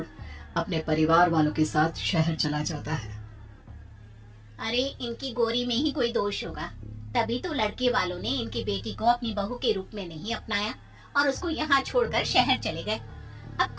अपने परिवार वालों के साथ शहर चला जाता है। अरे इनकी गोरी में ही कोई दोष होगा, तभी तो लड़के वालों ने इनकी बेटी को अपनी बहू के रूप में नहीं अपनाया और उसको यहाँ छोड़कर शहर चले गए। अब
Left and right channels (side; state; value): both; identical; correlation 1.00